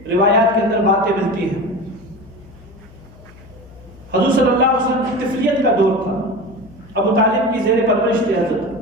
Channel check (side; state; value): left; noise; hum, 22 dB below the sound